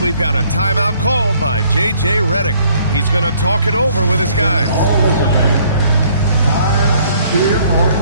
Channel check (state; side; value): inverted; both; correlation -0.62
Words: got a timeout called by J.J. Redick. He's going to talk it over with his guys.